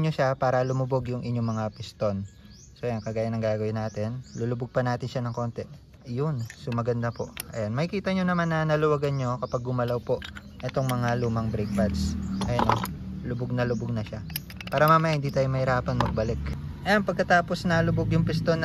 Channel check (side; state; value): both; identical; correlation 1.00